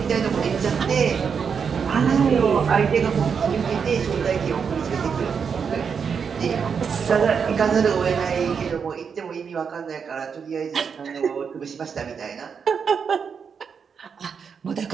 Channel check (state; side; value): quieter; left; 6.4 dB